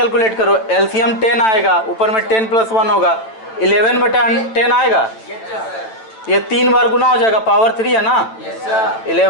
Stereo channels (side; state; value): right; late; 9.0 ms